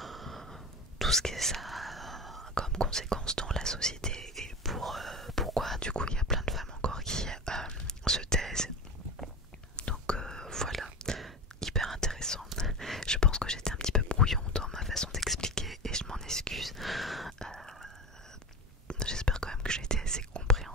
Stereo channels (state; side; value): normal; both; correlation 0.27